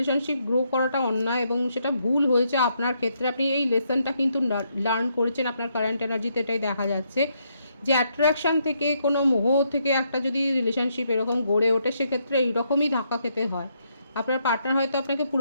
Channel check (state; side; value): inverted; both; correlation -0.76